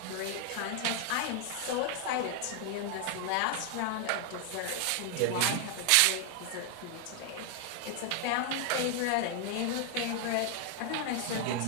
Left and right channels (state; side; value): different; both; correlation 0.00